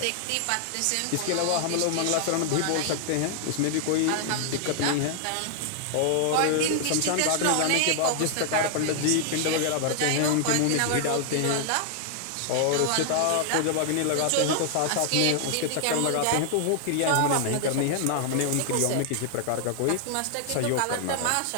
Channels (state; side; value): different; both; correlation 0.00